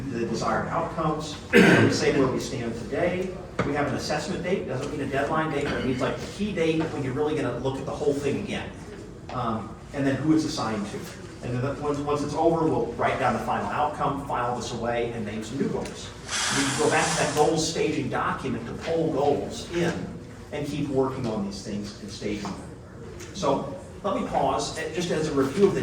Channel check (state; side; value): identical; both; correlation 1.00